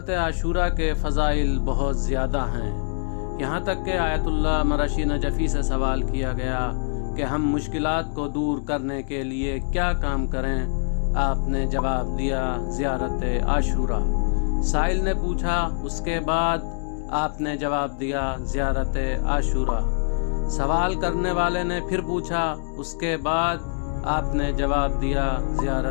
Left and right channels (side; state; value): right; silent; digital silence